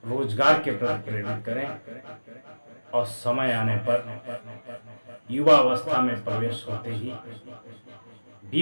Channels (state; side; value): inverted; both; correlation -1.00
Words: रोजगार के प्रति प्रेरित करें और समय आने पर युवा अवस्था में प्रवेश होते ही